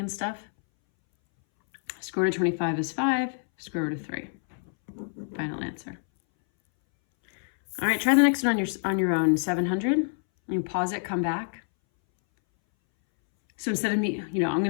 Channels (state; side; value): silent; right; 60 dB below the other